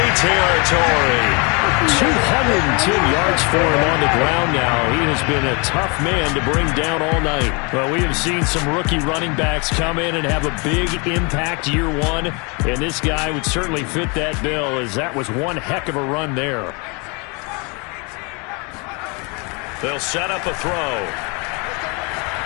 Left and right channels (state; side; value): quieter; right; 31.4 dB